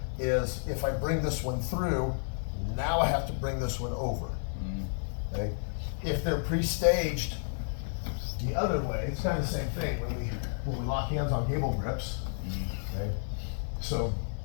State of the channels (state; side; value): silent; right; 57 dB below the other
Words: is if I bring this one through, now I have to bring this one over. Okay? If they're pre-staged the other way, it's kind of the same thing when we lock hands on gable grips. Okay? So